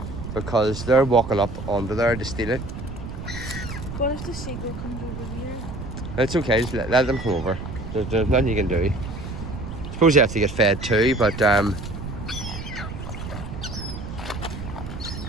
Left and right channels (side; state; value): right; noise; rumble, 8 dB below the sound